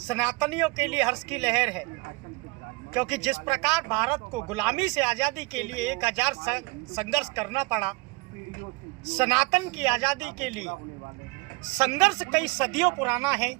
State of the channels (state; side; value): quieter; left; 25.8 dB